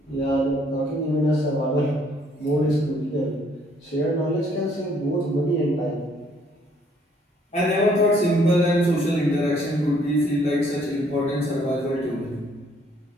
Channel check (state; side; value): normal; both; correlation 0.64